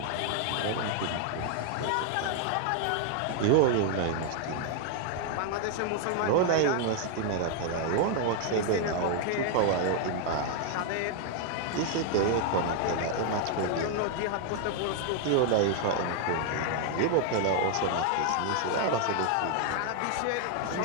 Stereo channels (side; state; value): both; different; correlation 0.00